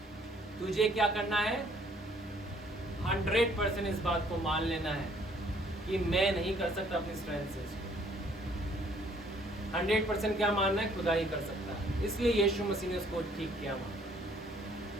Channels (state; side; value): normal; both; correlation 0.62